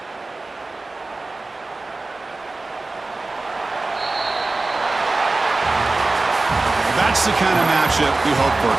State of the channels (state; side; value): quieter; left; 3.3 dB